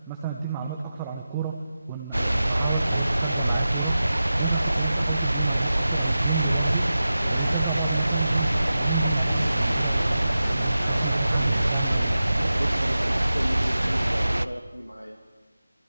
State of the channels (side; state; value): both; inverted; correlation -0.93